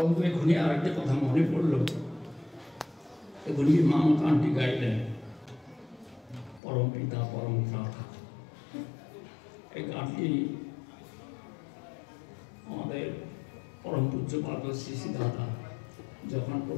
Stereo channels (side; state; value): right; drops out; at 6.6 s